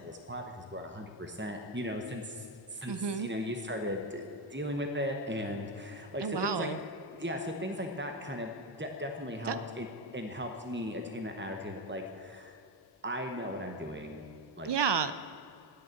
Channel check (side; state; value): both; normal; correlation 0.12